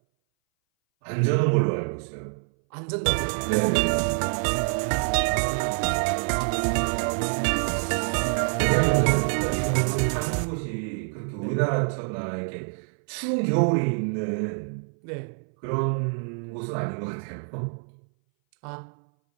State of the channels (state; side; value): silent; left; 60 dB below the other